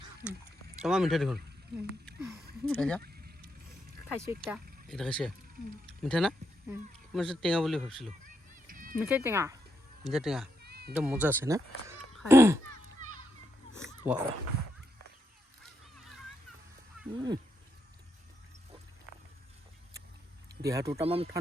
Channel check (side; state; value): both; normal; correlation 0.81